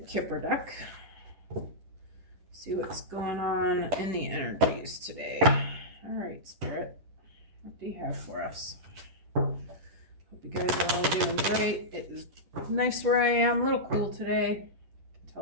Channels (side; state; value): left; late; 10 ms